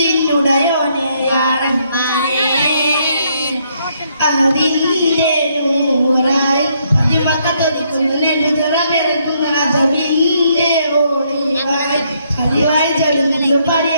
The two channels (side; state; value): both; inverted; correlation -0.72